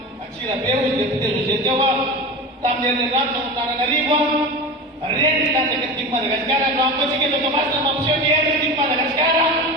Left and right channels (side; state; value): both; normal; correlation 0.27